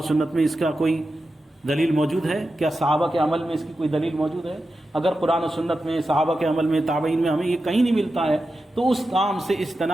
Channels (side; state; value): both; normal; correlation 0.91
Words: سنت میں اس کا کوئی دلیل موجود ہے، کیا صحابہ کے عمل میں اس کی کوئی دلیل موجود ہے۔ اگر قرآن و سنت میں، صحابہ کے عمل میں، تابعین میں ہمیں یہ کہیں نہیں ملتا ہے تو اس کام سے